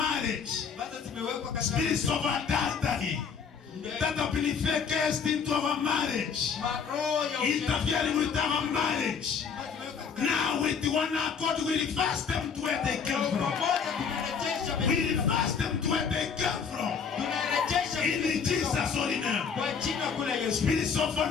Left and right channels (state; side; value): quieter; right; 6.3 dB